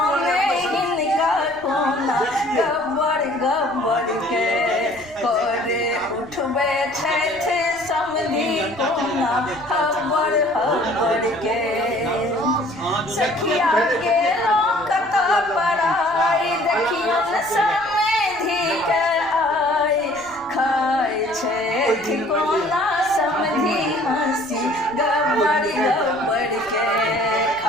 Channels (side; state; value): right; noise; rumble, 24 dB below the sound